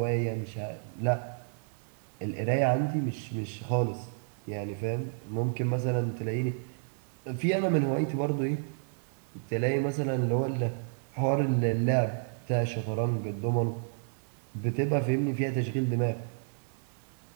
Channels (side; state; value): left; silent; digital silence